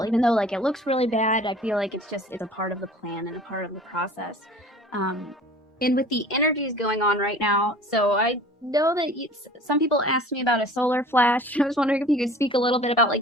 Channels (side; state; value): both; normal; correlation 0.45